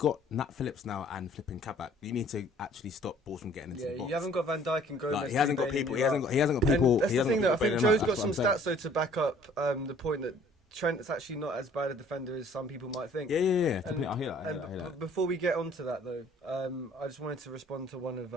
Nat Phillips now and flipping Kabak. You need to actually stop balls from getting into the box. You haven't got Van Dijk and Gomez. Like, he hasn't got people. He hasn't got people. That's he the hasn't thing, got though. I think Joe's got some saying. stats though to back up the point that Trent is actually not as bad a defender as some people might think. Yeah. I hear that. Before we get onto that though, I just wanted to respond to one of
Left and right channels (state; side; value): normal; both; correlation 0.55